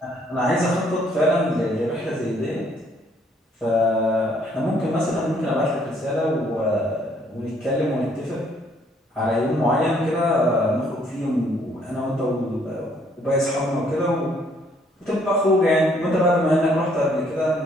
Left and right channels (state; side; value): normal; both; correlation 0.65